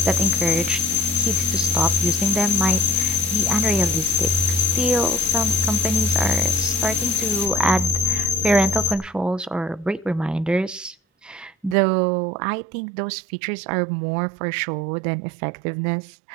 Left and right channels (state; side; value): drops out; left; at 11.8 s